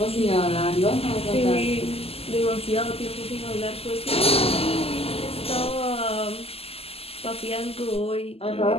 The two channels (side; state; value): right; late; 0.29 ms